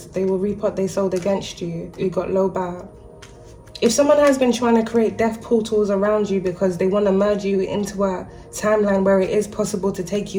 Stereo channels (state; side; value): identical; both; correlation 1.00